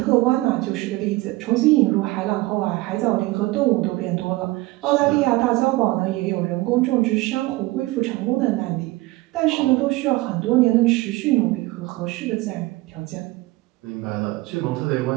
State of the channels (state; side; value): quieter; left; 20.3 dB